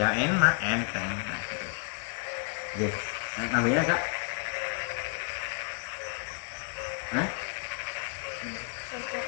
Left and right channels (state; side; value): quieter; right; 39.4 dB